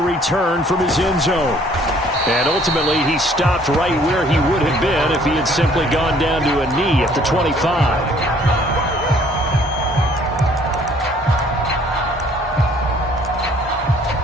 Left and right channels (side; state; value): both; normal; correlation 0.59